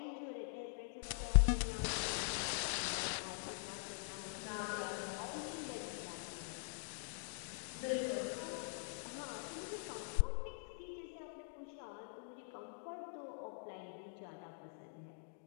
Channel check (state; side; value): silent; right; digital silence